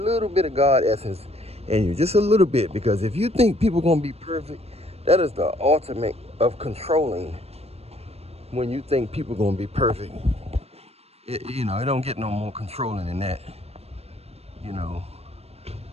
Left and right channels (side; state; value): left; late; 0.30 ms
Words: bit of God essence in you, just a little bit, because if you think people gonna be perfect, that is the ultimate of controlling. When you think people gonna be perfect, it don't get no more controlling than that. You know,